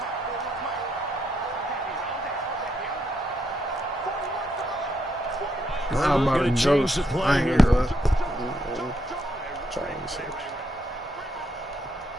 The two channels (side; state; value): both; normal; correlation 0.77